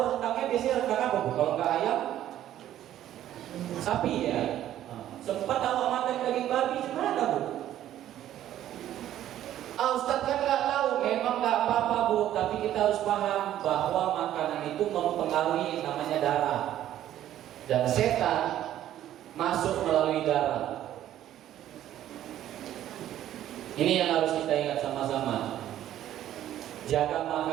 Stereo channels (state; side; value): quieter; left; 12.2 dB